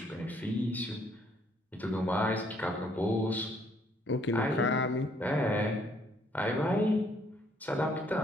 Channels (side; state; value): both; normal; correlation 0.66